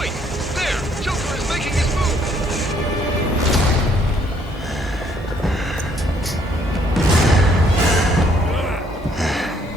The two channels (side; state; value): both; normal; correlation 0.66